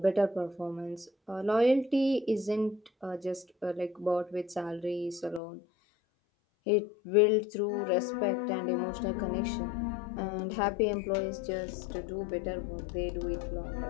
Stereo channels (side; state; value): right; drops out; at 5.4 s